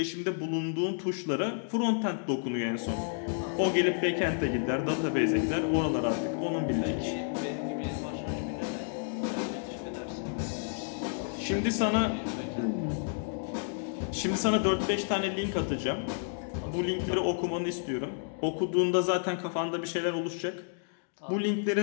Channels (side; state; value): right; silent; digital silence